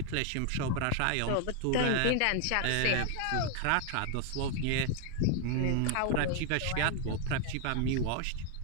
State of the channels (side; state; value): both; different; correlation 0.00